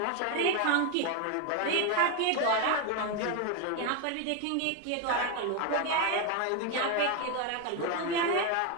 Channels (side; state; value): both; different; correlation 0.02